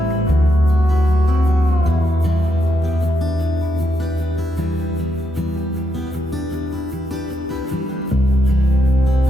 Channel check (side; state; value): both; normal; correlation 0.79